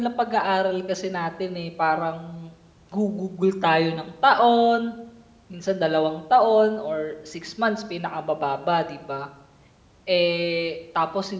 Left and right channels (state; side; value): identical; both; correlation 1.00